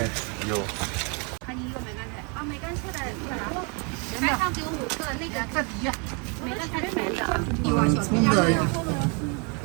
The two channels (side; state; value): left; quieter; 34.2 dB